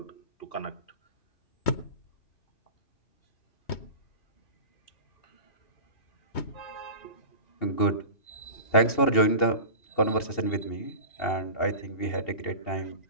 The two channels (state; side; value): late; right; 2.8 ms